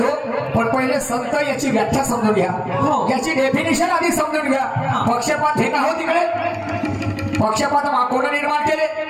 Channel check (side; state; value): both; identical; correlation 1.00